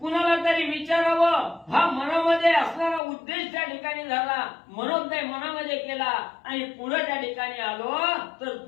तरी विचारावं हा मनामध्ये असणारा उद्देश त्या ठिकाणी झाला. मनोदय मनामध्ये केला आणि पुढे त्या ठिकाणी आलो तर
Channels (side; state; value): right; drops out; at 3.0 s